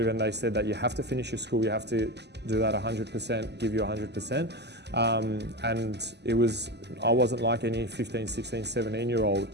and they said that you have to finish your school, you have to do that 100%, give you 100%. And I wasn't like any 15, 16,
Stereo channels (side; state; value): left; late; 0.50 ms